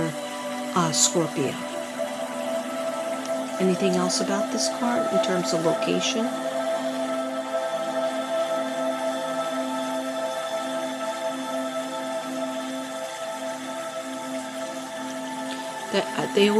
Scorpio. Anything else about this card in terms of location? They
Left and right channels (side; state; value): both; identical; correlation 1.00